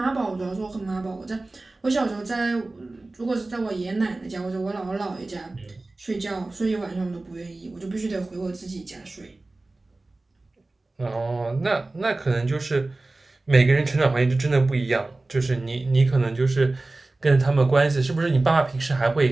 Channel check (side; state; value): left; quieter; 3.1 dB